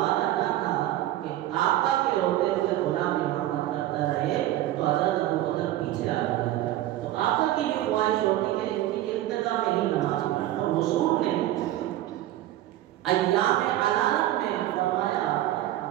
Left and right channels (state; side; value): quieter; left; 14.3 dB